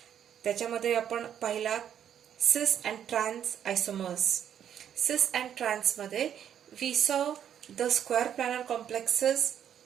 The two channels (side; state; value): left; quieter; 9.4 dB